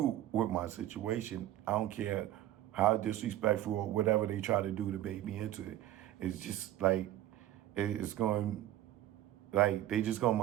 with my situation. I don't care how disrespectful or whatever they try to do to bait me into it. It's just like, it's going, like, they just gonna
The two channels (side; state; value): left; quieter; 13.4 dB